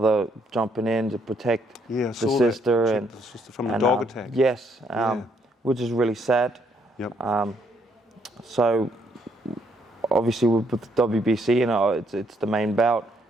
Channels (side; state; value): both; normal; correlation 0.71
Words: jumping in to protect the sister and the sister from the dog attack. Yes, which is really sad. Yep. So obviously with the WBC, it's the main bout,